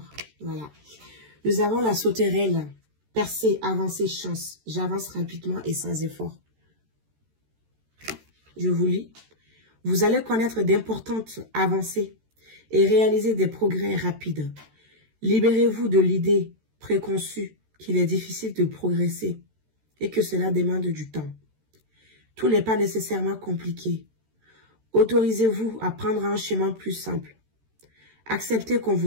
Voilà. Nous avons la sauterelle. Percer, avancer, chance. J'avance rapidement et sans effort. Je vous lis. Vous allez connaître d'importantes avancées et réaliser des progrès rapides. Libérez-vous de l'idée préconçue qu'il est difficile de progresser et que cela demande du temps. Tout n'est pas nécessairement compliqué. Autorisez-vous à prendre un chemin plus simple. Acceptez qu'on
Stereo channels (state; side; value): late; left; 13 ms